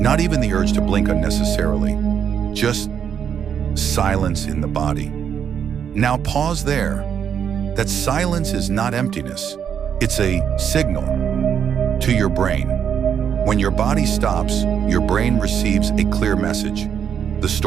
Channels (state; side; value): quieter; left; 8.1 dB